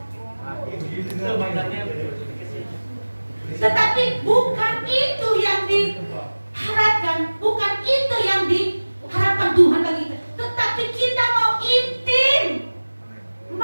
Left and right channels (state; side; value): inverted; both; correlation -1.00